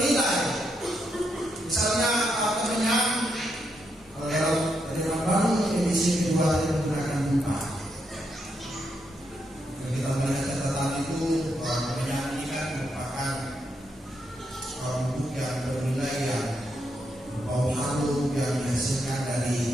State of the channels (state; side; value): normal; both; correlation 0.80